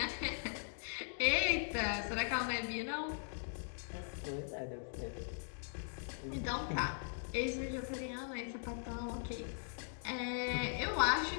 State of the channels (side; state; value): right; silent; digital silence